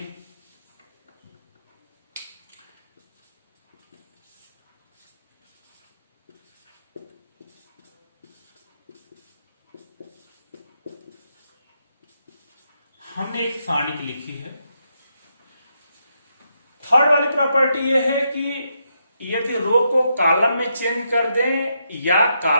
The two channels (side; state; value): both; inverted; correlation -0.81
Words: हमने एक सारणी लिखी है। थर्ड वाली प्रॉपर्टी यह है कि यदि रो को कॉलम में चेंज कर दें या